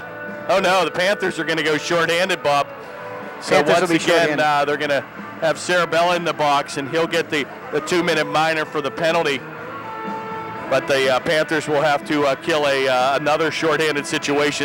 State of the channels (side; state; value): both; identical; correlation 1.00